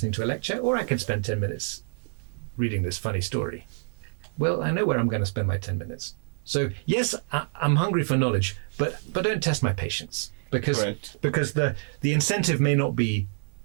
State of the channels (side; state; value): left; silent; 57 dB below the other